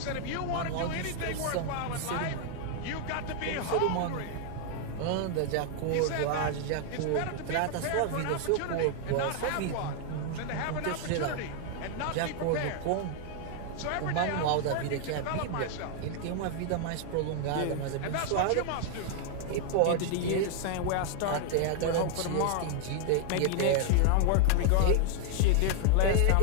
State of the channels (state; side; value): different; both; correlation 0.00